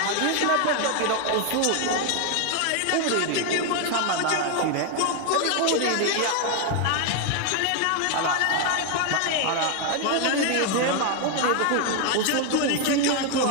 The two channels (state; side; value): different; both; correlation 0.01